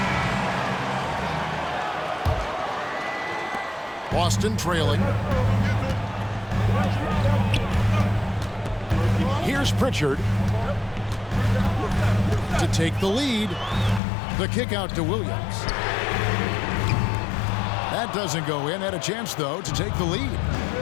Boston trailing. Here's Pritchard to take the lead. The kick out to Williams. That doesn't go in. Had a chance, though, to take the lead.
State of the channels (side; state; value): right; drops out; at 14.0 s